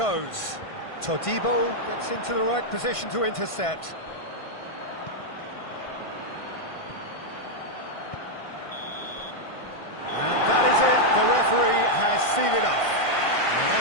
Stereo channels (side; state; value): right; late; 1.5 ms